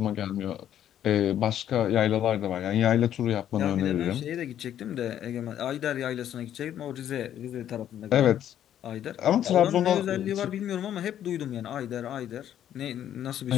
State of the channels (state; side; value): quieter; right; 10.7 dB